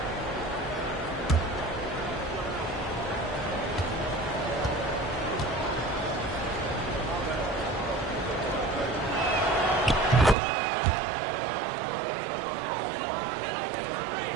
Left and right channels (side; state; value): left; drops out; at 10.4 s